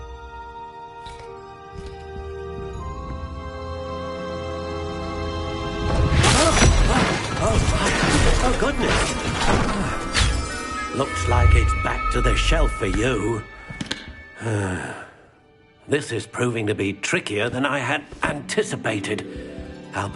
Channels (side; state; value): both; identical; correlation 1.00